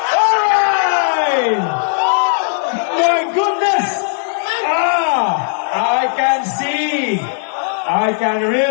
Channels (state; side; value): silent; right; 65 dB below the other